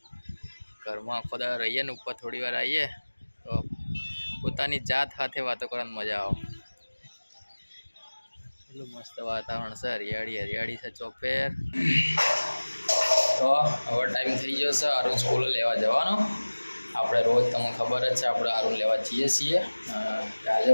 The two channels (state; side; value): inverted; both; correlation -1.00